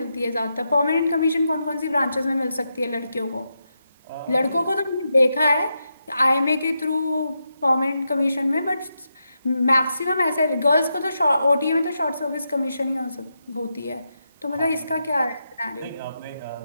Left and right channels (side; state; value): both; inverted; correlation -0.86